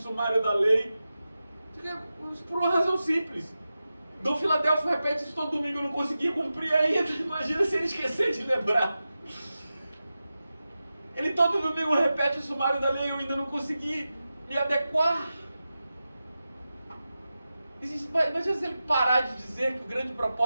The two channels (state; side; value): inverted; both; correlation -0.93